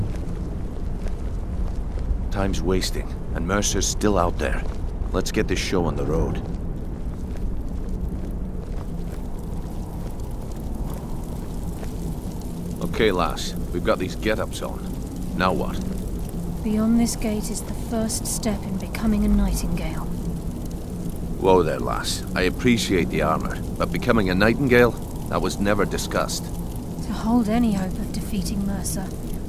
Time's wasting, and Mercer's still out there. Let's get this show on the road. Okay, lass. We've got these get-ups on. Now what? Beyond this gate is the first step in becoming a Nightingale. Whoa there, lass. I appreciate the armor, but becoming a Nightingale? That was never discussed. To hold any hope of defeating Mercer,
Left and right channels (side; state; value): both; identical; correlation 1.00